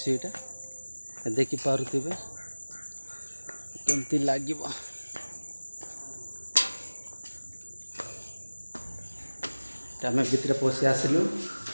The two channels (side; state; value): both; inverted; correlation -1.00